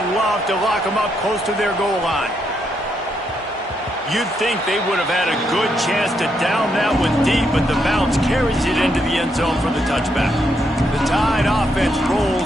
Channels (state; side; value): normal; both; correlation 0.78